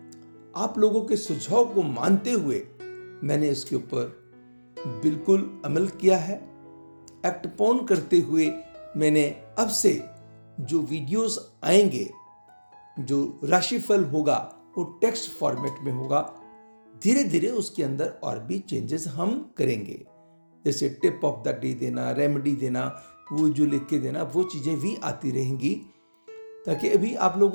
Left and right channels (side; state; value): both; inverted; correlation -1.00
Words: आप लोगों के सुझाव को मानते हुए मैंने इसके ऊपर बिल्कुल अमल किया है। एक्ट ऑन करते हुए मैंने अब से जो वीडियोस आएंगे, जो राशिफल होगा, वो टेक्स्ट फॉर्मेट में होगा। धीरे धीरे उसके अंदर और भी चेंजेस हम करेंगे, जैसे टिप ऑफ द डे देना, रेमेडी देना, वो जो लिख के देना, वो चीज़ें भी आती रहेंगी, ताकि अभी आप